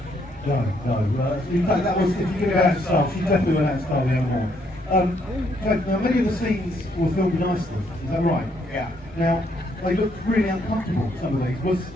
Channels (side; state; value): both; normal; correlation 0.71